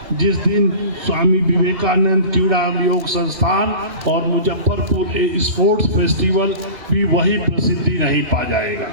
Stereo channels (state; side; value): late; left; 3.0 ms